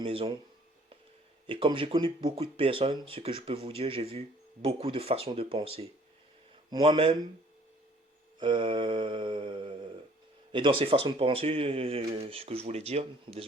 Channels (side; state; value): both; normal; correlation 0.57